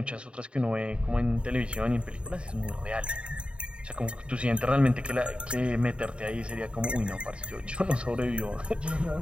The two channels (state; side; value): late; left; 0.056 ms